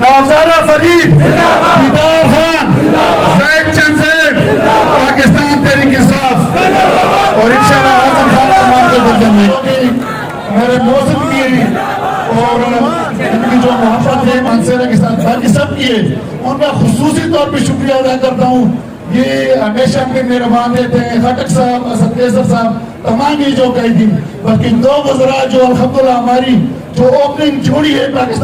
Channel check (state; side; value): identical; both; correlation 1.00